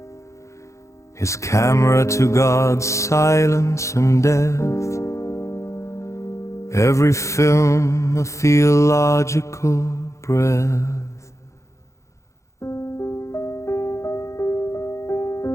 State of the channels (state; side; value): late; right; 0.14 ms